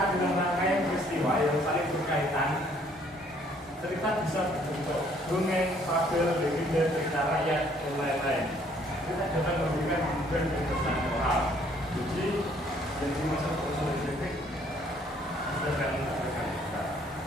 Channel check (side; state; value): both; normal; correlation 0.63